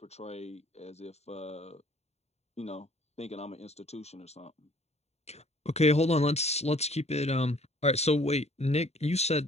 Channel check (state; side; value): late; right; 0.31 ms